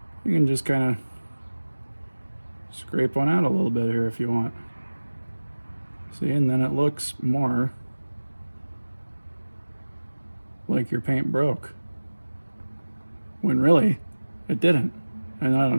You can just kind of scrape one out a little bit here if you want. See, and then it looks more like your paint broke, when really it didn't. And I don't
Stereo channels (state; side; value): inverted; both; correlation -1.00